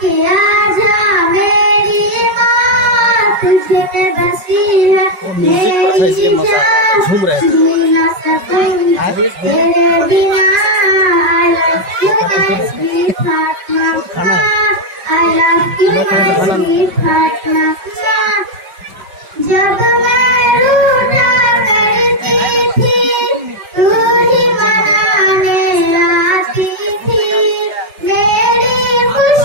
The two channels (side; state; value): left; late; 5.4 ms